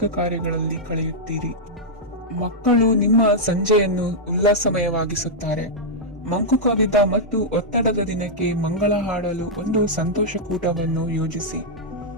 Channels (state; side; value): normal; both; correlation -0.06